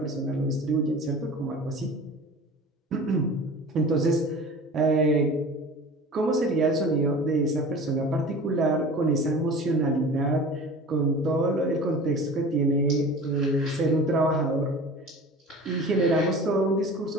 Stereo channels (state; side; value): normal; both; correlation 0.39